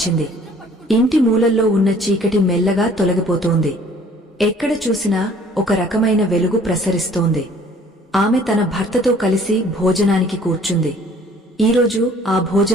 ఇంటి మూలల్లో ఉన్న చీకటి మెల్లగా తొలగిపోతోంది. ఎక్కడ చూసినా ఒక రకమైన వెలుగు ప్రసరిస్తోంది. ఆమె తన భర్తతో కలిసి భోజనానికి కూర్చుంది. ఈరోజు ఆ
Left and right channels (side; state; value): both; normal; correlation 0.55